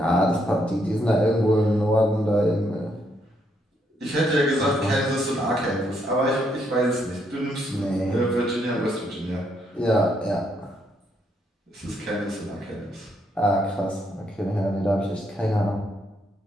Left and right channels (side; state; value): both; normal; correlation 0.75